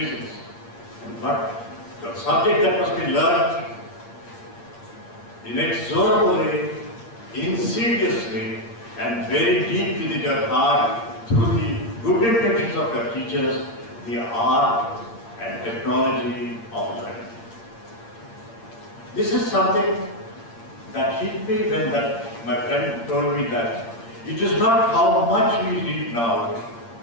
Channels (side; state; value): right; late; 8.7 ms